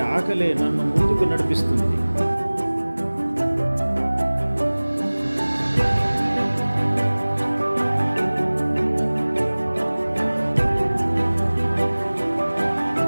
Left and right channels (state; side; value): inverted; both; correlation -1.00